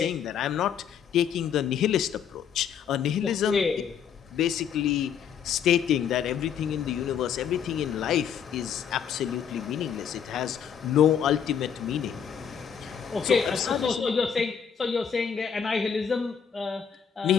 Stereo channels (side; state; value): right; quieter; 7.8 dB